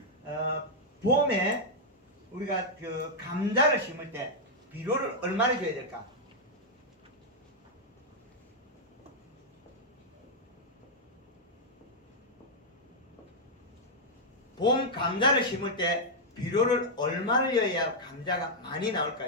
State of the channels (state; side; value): normal; both; correlation -0.04